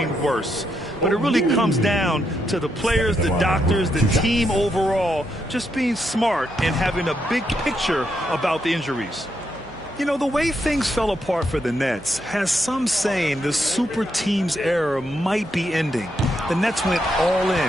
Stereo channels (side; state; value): right; noise; hum, 23 dB below the sound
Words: worse. But it really comes down to the players, the doctors, the team overall, just being smart and having a big picture about the injuries. You know, the way things fell apart for the Nets has some saying the super team's era might be ending. The Nets went all in